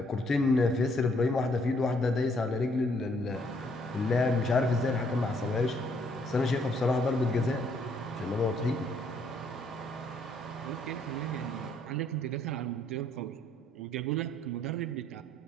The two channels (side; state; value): both; normal; correlation 0.67